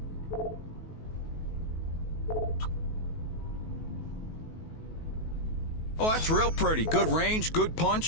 Oh, that's real pretty. Good range, good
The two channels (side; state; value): right; late; 19 ms